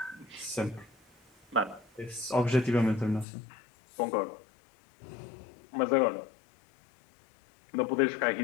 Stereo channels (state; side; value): drops out; right; at 3.2 s